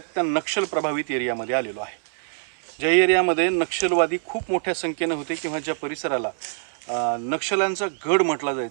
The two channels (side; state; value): left; silent; digital silence